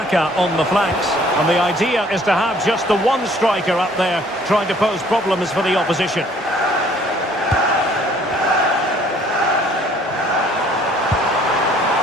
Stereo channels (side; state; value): both; normal; correlation 0.58